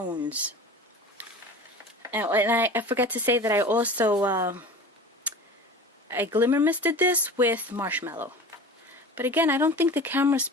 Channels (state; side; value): normal; both; correlation 0.37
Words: And I forgot to say that I also I glimmer misted this with marshmallow. But again, I don't think the camera's